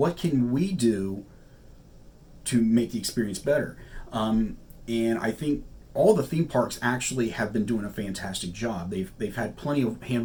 can we do to make the experience better? And I think all the theme parks actually have been doing a fantastic job. They've had plenty of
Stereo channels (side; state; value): both; identical; correlation 1.00